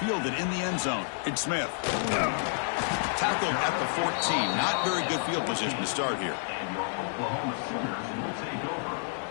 10. Fielded in the end zone. It's Smith. Tackled at the 14. Not very good field position to start here. And your Oklahoma Sooners will take over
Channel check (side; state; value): right; silent; digital silence